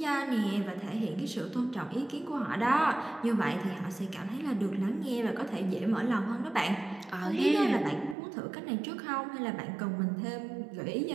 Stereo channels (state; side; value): drops out; left; at 8.2 s